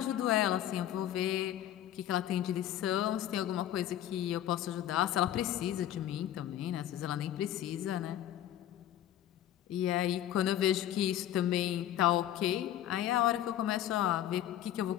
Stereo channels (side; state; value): right; quieter; 11.9 dB